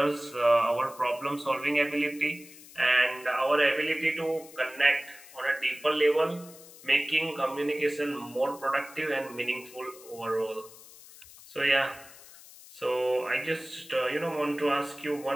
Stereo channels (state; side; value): noise; left; hiss, 20 dB below the sound